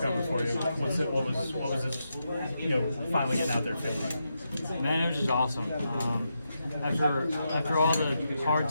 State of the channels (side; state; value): both; inverted; correlation -0.85